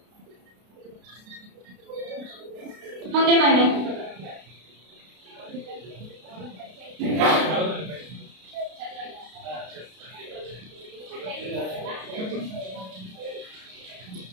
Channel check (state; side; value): late; left; 32 ms